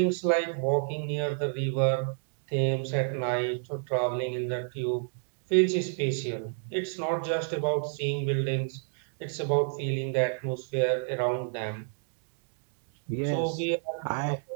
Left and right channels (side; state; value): left; silent; digital silence